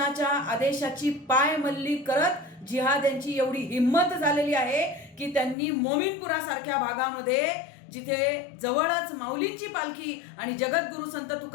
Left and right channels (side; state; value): right; drops out; at 5.6 s